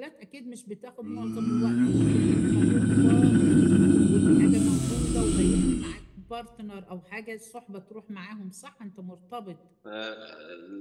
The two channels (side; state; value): both; identical; correlation 1.00